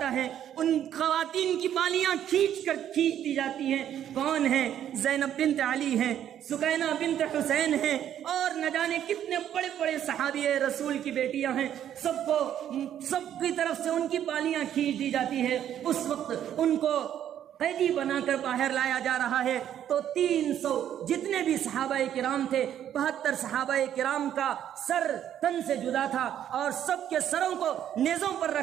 ہے، ان خواتین کی بالیاں کھینچ دی جاتی ہیں۔ کون ہیں؟ زینب بنت علی ہیں، سکینہ بنت حسین ہیں اور نہ جانے کتنے بڑے بڑے صحابی رسول کی بیٹیاں ہیں، سب کی طرف سے ان کی بالیاں کھینچ دی جاتی ہے۔ اس وقت ان کو قیدی بنا کر باہر لایا جا رہا ہے تو 300 جتنے بھی صحابہ کرام تھے، 72 صحابہ کرام کا سر تن سے جدا تھا اور سب کے سروں کو نیزوں پر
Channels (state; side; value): quieter; left; 10.4 dB